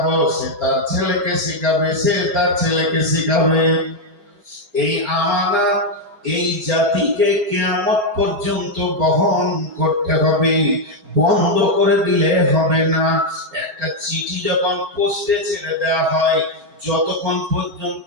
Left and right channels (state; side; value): late; left; 4.9 ms